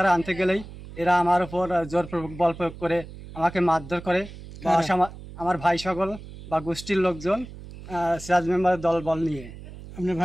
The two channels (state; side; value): noise; right; hum, 15 dB below the sound